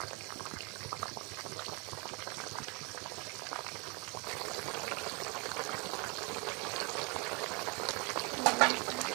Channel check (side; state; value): left; quieter; 30.9 dB